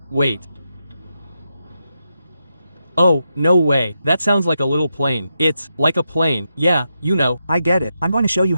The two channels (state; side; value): inverted; both; correlation -0.85